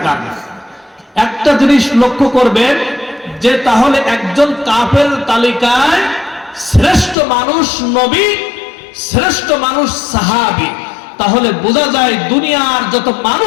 একটা জিনিস লক্ষ্য করবেন যে তাহলে একজন কাফের তালিকায় শ্রেষ্ঠ মানুষ নবী, শ্রেষ্ঠ মানুষ সাহাবী। তাহলে বোঝা যায় দুনিয়ার যত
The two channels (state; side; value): drops out; right; at 7.2 s